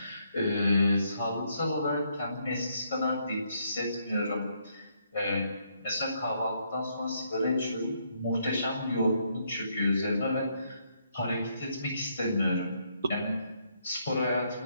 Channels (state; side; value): inverted; both; correlation -0.73